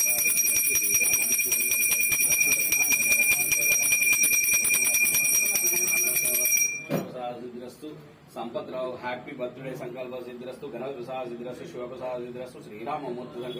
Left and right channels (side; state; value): both; identical; correlation 1.00